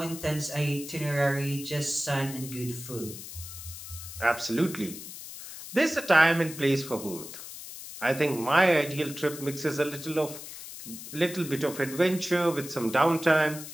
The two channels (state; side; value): noise; left; hiss, 12 dB below the sound